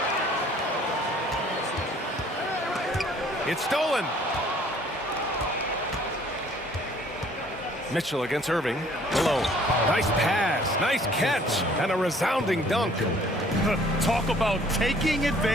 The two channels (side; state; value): both; normal; correlation 0.57